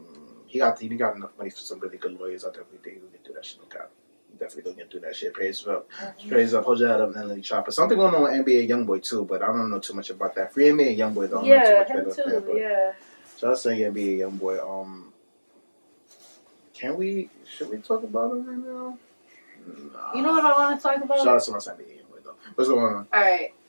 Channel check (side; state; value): both; inverted; correlation -1.00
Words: He got enough money for some really good lawyers. I definitely think he'll get through that shit. No cap. Definitely gonna get through that shit. Praise up. Hold your head up, Untitled Chapter. Something going on with NBA YoungBoy too, but I don't know too much about that. Free NBA YoungBoy though. Yeah, him too. Yeah. So I was saying NBA YoungBoy. Should we talk about him right now? Nah. You know what I want to talk about? Shout out to my NBA YoungBoy though. What's going on? All right.